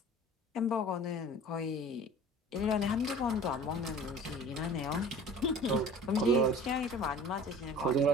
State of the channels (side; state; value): both; normal; correlation 0.43